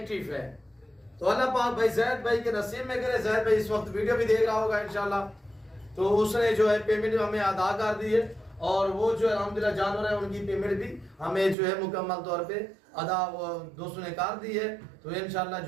है। तो अल्लाह पाक भाई जैद भाई के नसीब में करे। जैद भाई इस वक्त वीडियो भी देख रहा होगा इंशाल्लाह। तो उसने जो है पेमेंट हमें अदा कर दी है और वो जो है अल्हम्दुलिल्लाह जानवर है उनकी पेमेंट भी हमें जो है मुकम्मल तौर पे अदा दोस्तों ने कर दी है। तो इंशाल्लाह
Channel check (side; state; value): left; drops out; at 11.6 s